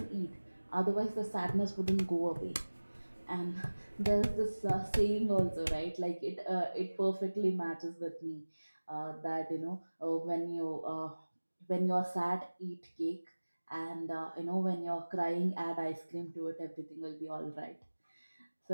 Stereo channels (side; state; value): both; inverted; correlation -1.00